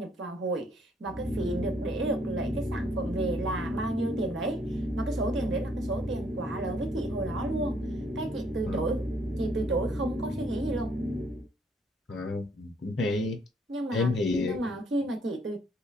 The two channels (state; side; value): normal; both; correlation 0.67